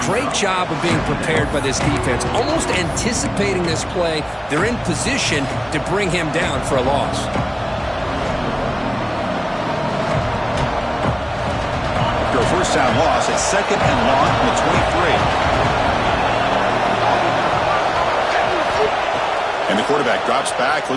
great job of being prepared by this defense. Almost anticipating this play. They're in position to bring him down for a loss. First down loss at second and long from the 23. And the quarterback drops back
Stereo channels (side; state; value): both; identical; correlation 1.00